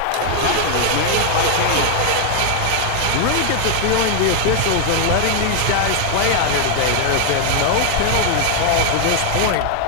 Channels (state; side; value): different; both; correlation 0.00